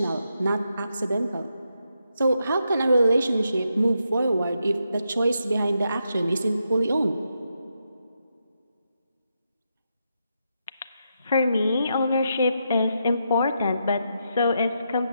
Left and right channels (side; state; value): both; inverted; correlation -0.82